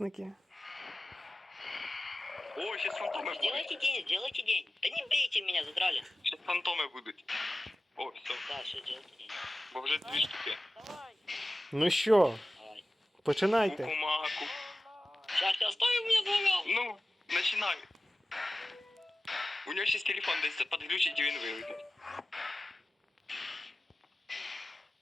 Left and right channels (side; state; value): both; normal; correlation 0.96